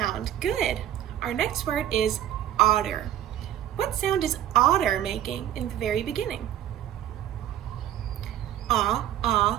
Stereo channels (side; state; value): left; quieter; 11.7 dB